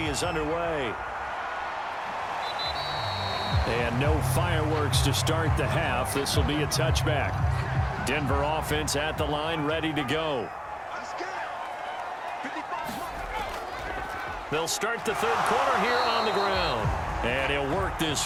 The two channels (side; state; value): both; identical; correlation 1.00